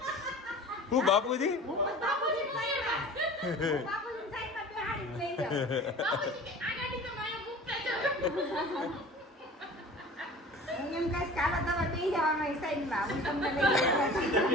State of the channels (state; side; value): normal; both; correlation 0.41